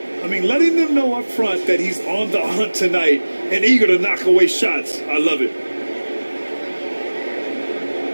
I mean, letting them know up front that he's on the hunt tonight and eager to knock away shots. I love it.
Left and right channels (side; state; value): both; inverted; correlation -1.00